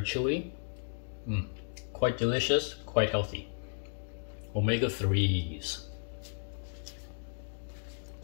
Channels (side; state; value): right; silent; digital silence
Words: Quite delicious, quite healthy. Omega-3s.